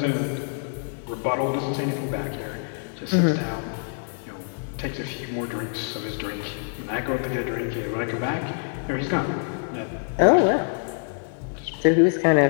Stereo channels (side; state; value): right; silent; 61 dB below the other